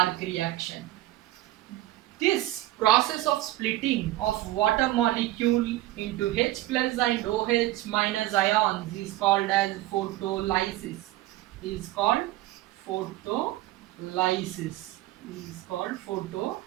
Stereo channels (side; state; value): left; quieter; 16.4 dB